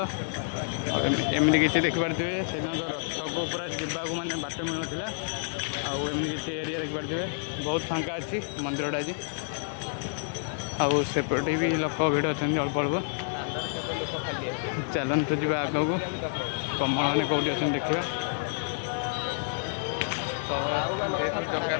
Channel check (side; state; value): right; silent; digital silence